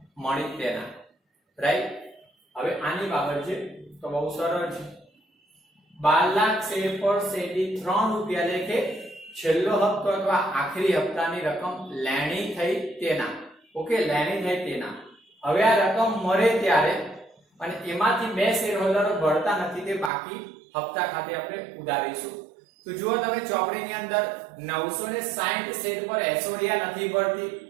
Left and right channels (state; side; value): drops out; left; at 20.1 s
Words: મળી તેના રાઈટ. હવે આની બાબત છે તો બહુ સરળ છે 12 લાખ શેર પર શેરથી 3 રૂપિયા લેખે છેલ્લો હપ્તો અથવા આખરી હપ્તાની રકમ લેણી થઈ તેના. ઓકે લેણી થઈ તેના. હવે આ રકમ મળે ત્યારે અને એમાંથી 2 શેર હોલ્ડરો ભરતા નથી તે બાકી હપ્તા ખાતે આપણે ઉધારીશું. તો જુઓ તમે ચોપડીની અંદર 960 શેર પર એશ્વર્યા નથી ભરતી